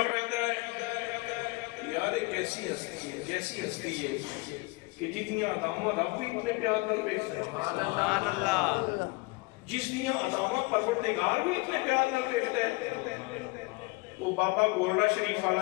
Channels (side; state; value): right; quieter; 25.4 dB